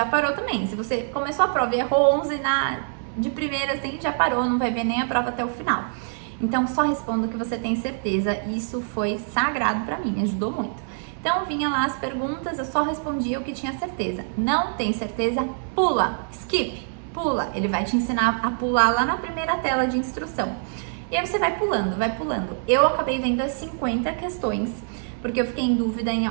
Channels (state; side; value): silent; left; 62 dB below the other